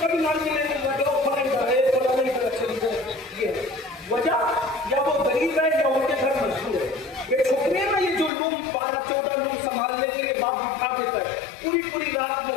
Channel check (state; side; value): drops out; right; at 8.3 s